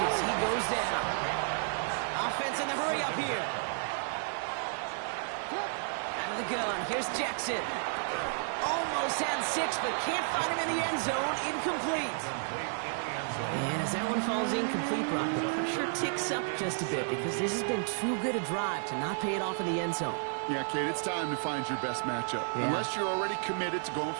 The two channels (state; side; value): silent; left; digital silence